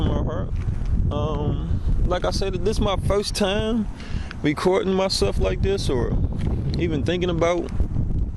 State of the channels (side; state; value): both; identical; correlation 1.00